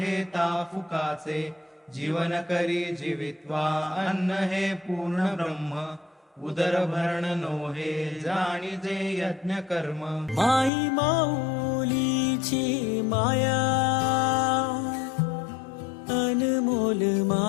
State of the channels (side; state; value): right; drops out; at 10.7 s